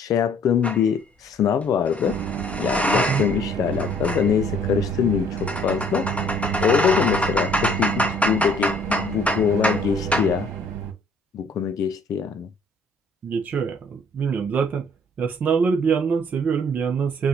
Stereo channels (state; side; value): normal; both; correlation 0.59